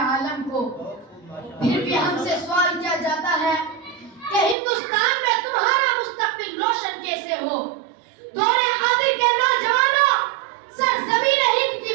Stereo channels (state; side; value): drops out; left; at 4.5 s